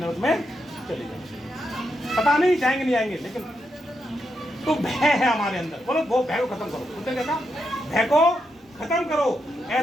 में चले जाओ, पता नहीं जाएंगे नहीं आएंगे, लेकिन तो भय है हमारे अंदर। बोलो वो भय को खत्म करो। उसने कहा भय को खत्म करो।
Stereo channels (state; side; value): normal; both; correlation 0.83